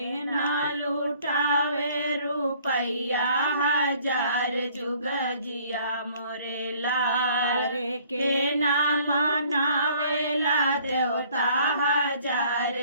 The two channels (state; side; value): inverted; both; correlation -0.58